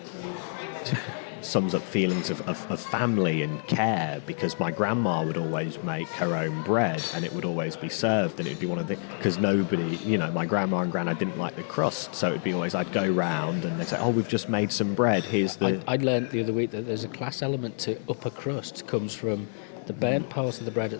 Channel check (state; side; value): silent; right; 60 dB below the other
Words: up feelings of family and care, because my grandma would always make her own bread, and it would always be served, and it'd be one of the, because nobody, my grandma and granddad didn't like the crust, so it'd be always, I'd go round and they'd say, oh, we've just made some bread, here's the... I'd learnt the other week that there's a class element to upper crust. Comes from the burnt part of the bread